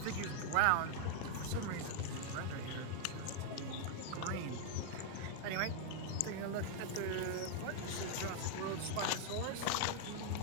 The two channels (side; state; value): both; different; correlation 0.00